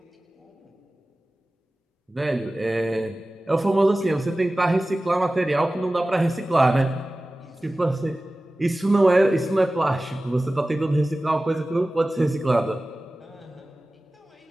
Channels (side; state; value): both; normal; correlation 0.97